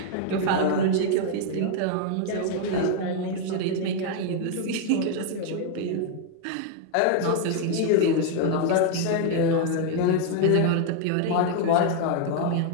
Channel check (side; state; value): both; different; correlation 0.00